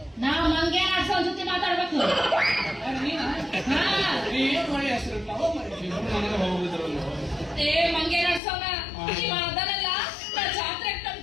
ನಾ ಮಂಗೆ ಆಡ್ಸೋ ಜೊತೆ ಮಾತಾಡ್ಬೇಕು. ಏನ್ ಮಾಡಿ ಹೆಸರು ನನಗೆ ಹೋಗಿದ್ರಲ್ಲ ಏ ಮಂಗೆ ಆಡ್ಸೋನ ನೀವು ಅದನ್ನೆಲ್ಲ ನಾ ಜಾತ್ರೆ ತನ್ನ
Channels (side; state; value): right; drops out; at 8.4 s